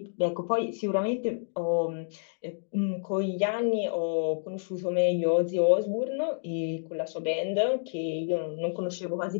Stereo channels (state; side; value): silent; right; digital silence